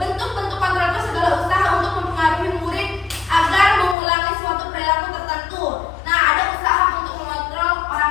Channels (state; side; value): drops out; right; at 4.0 s